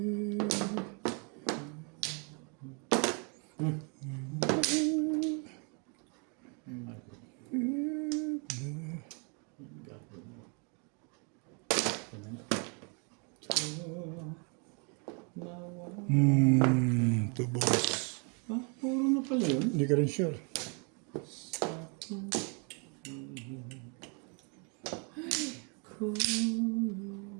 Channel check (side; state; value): left; quieter; 36.0 dB